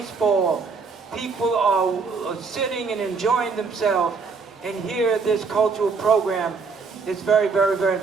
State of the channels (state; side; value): quieter; left; 4.9 dB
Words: People are sitting and enjoying themselves, and here this cultural program is very, very, very